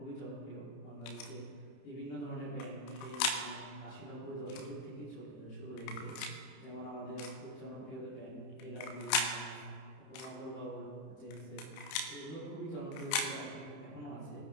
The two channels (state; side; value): late; right; 31 ms